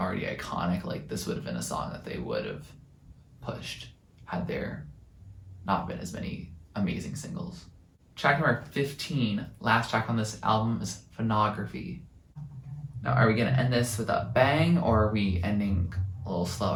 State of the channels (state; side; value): identical; both; correlation 1.00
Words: iconic, like, this would have been a song that they would have pushed had there not been as many amazing singles. Track number 15, last track on this album, is Phonography. Now, are we gonna end this with a bang, or are we ending a little